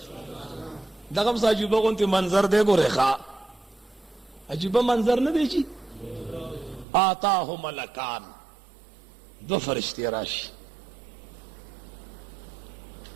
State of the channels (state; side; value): drops out; left; at 6.9 s